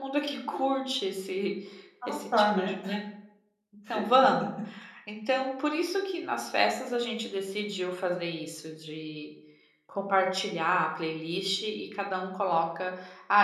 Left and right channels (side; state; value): both; identical; correlation 1.00